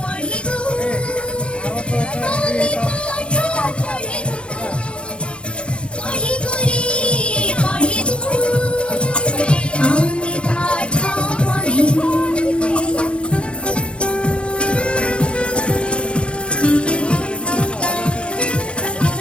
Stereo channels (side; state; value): right; late; 0.057 ms